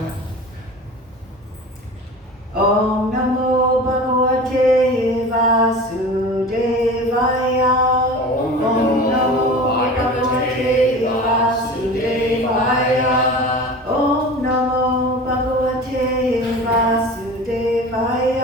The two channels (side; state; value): both; normal; correlation 0.36